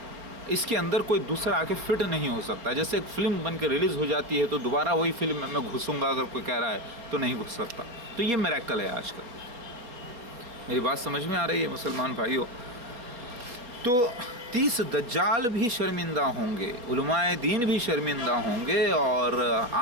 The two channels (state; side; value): late; left; 4.2 ms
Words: اس کے اندر کوئی دوسرا آ کے فٹ نہیں ہو سکتا. جیسے ایک فلم بن کے ریلیز ہو جاتی ہے تو دوبارہ وہی فلم میں گھسوں گا اگر کوئی کہہ رہا ہے تو نہیں گھس سکتا. تو یہ میریکل ہے آج کل. میری بات سمجھ میں آ رہی ہے مسلمان بھائیوں؟ تو 30 دجال بھی شرمندہ ہوں گے، علماء دین بھی شرمندہ ہوں گے، اور